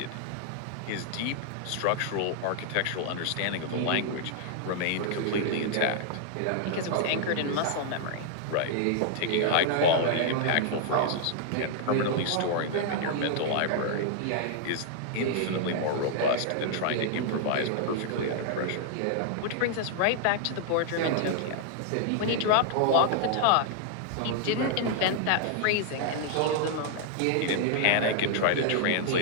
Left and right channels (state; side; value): different; both; correlation -0.01